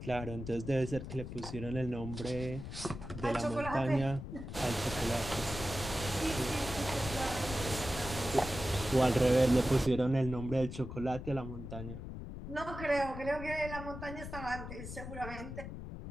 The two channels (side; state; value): left; noise; rumble, 9 dB below the sound